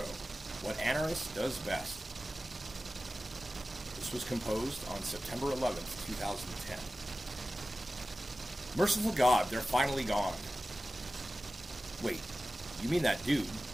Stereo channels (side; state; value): both; normal; correlation 0.95